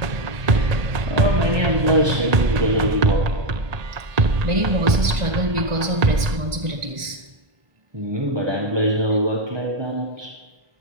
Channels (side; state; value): left; late; 1.4 ms